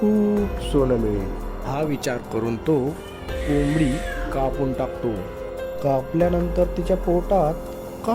सोनं मिळेल. हा विचार करून तो कोंबडी कापून टाकतो. कापल्यानंतर तिच्या पोटात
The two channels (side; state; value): both; identical; correlation 1.00